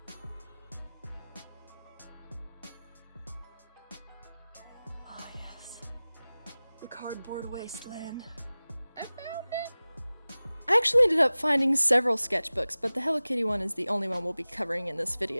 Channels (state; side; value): inverted; both; correlation -0.98